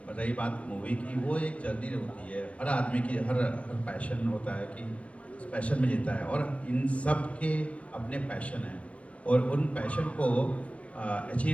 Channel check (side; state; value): right; late; 0.063 ms